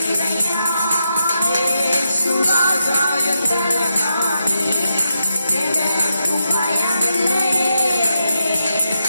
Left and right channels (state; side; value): inverted; both; correlation -0.85